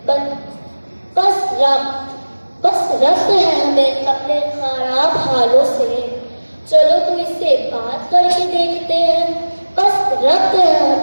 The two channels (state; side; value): inverted; both; correlation -1.00